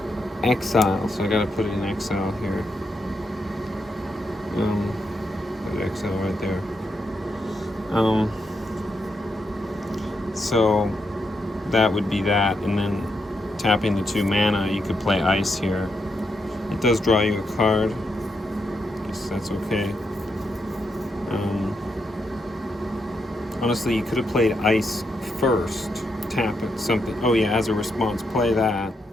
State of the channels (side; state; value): both; normal; correlation 0.82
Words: Exile, so I gotta put it in exile here. Put exile right there. So that would be that, and then tapping the 2 mana, you could play ice here. It does draw you a card. Guess that's okay. Honestly, you could have played ice first, tap it, something. Oh yeah, as a response, play that.